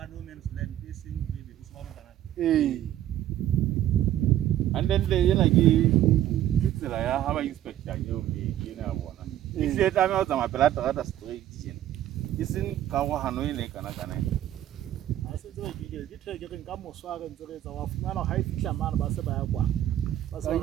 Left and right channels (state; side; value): quieter; left; 12.4 dB